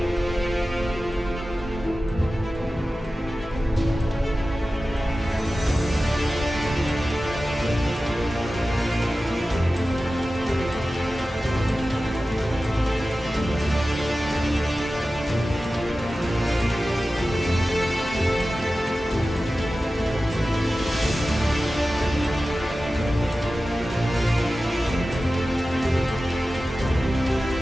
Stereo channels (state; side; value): normal; both; correlation 0.95